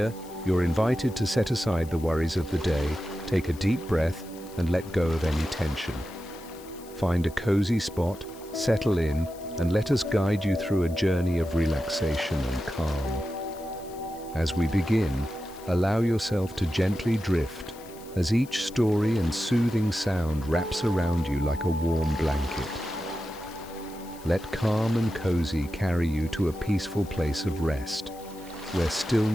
you're invited to set aside the worries of the day, take a deep breath, and let go of any tension. Find a cozy spot, settle in, and let us guide you through a journey of relaxation and calm. As we begin, allow yourself to gently drift as each story and soothing sound wraps around you like a warm blanket. Let calm and cozy carry you to a peaceful place of rest, where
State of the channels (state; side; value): noise; left; hiss, 21 dB below the sound